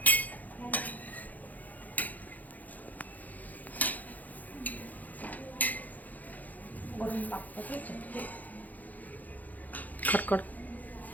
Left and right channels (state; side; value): late; right; 0.081 ms